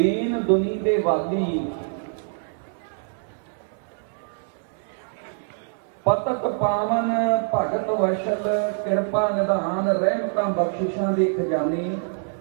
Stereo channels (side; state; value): left; silent; 62 dB below the other